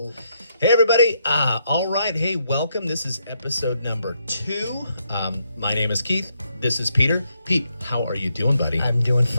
Hey, everybody. All right. Hey, welcome. This is episode number 2. My name is Keith. This is Peter. Pete, how are you doing, buddy? I'm doing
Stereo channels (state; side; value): inverted; both; correlation -0.77